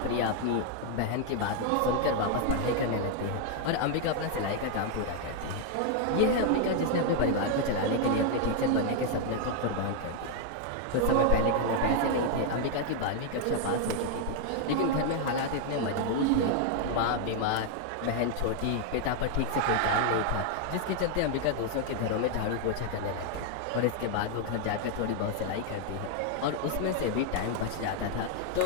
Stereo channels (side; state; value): both; different; correlation 0.00